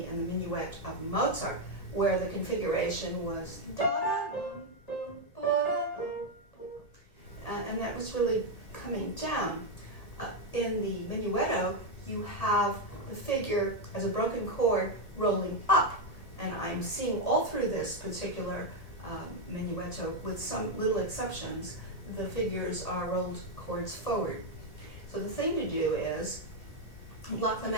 in the Minuet of Mozart, where the configuration was and that was really coming down. In the Minuetto, you have the figure as a broken chord rolling up, and I'm seeing all through this particular Minuetto, with some little exceptions, the figures are rolled chords forward. So the thing to do is block them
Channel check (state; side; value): late; right; 1.8 ms